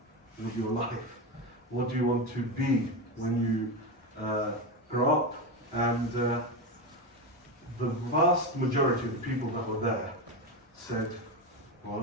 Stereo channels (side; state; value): both; normal; correlation 0.16